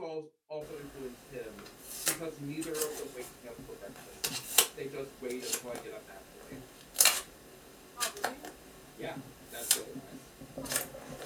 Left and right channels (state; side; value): identical; both; correlation 1.00